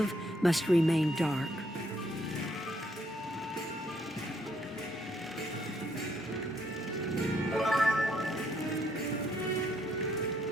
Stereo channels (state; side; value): normal; both; correlation 0.71